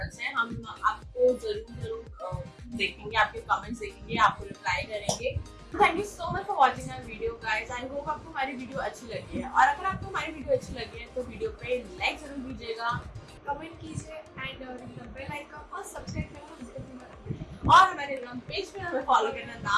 हैं। हम आपको जरूर देखेंगे, आपके कमेंट्स देखेंगे, आपको रिप्लाई करेंगे। Thank you so much for watching our video guys. I hope आपको हमारी वीडियो अच्छी लगी है, और अगर आपको हमारी वीडियो अच्छी लगी है तो वीडियो पे लाइक जरूर दीजिएगा, कमेंट कीजिए एंड बेल आइकन और सब्सक्राइब करना। और हमारे इंस्टाग्राम पेज पे हमें फॉलो करना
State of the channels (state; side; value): identical; both; correlation 1.00